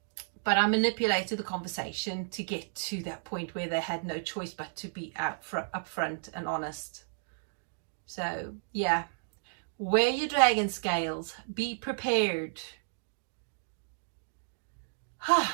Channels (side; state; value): left; silent; digital silence